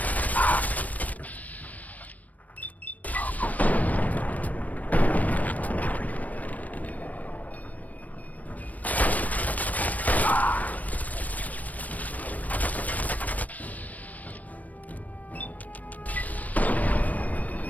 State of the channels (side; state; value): right; late; 0.074 ms